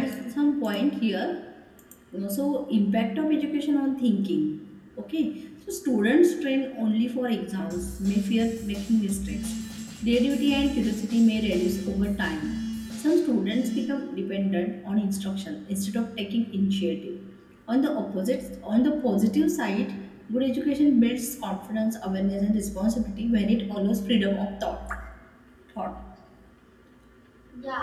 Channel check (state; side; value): identical; both; correlation 1.00